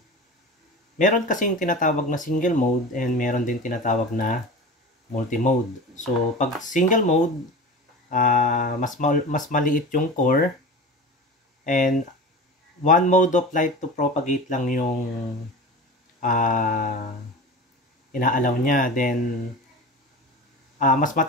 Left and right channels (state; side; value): normal; both; correlation 0.32